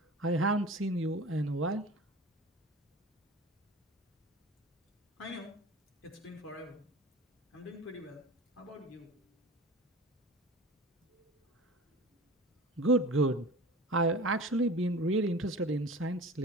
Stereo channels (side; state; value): both; normal; correlation 0.37